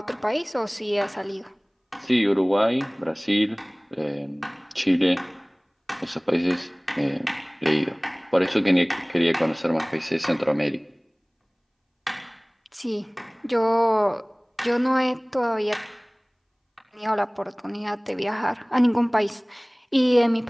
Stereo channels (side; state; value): both; identical; correlation 1.00